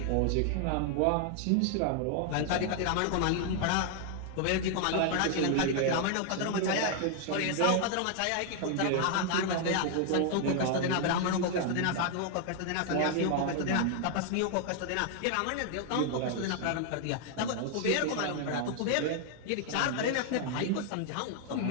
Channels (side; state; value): both; different; correlation 0.00